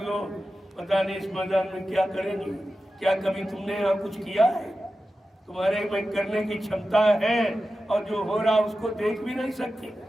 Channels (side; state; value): both; normal; correlation 0.92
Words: दो। पता नहीं इस मैदान में क्या करेंगे। क्या कभी तुमने यहाँ कुछ किया है? तुम्हारे में करने की क्षमता है और जो हो रहा उसको देख भी नहीं सकते।